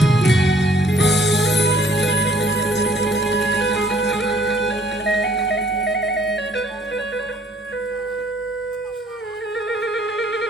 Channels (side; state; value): both; normal; correlation 0.61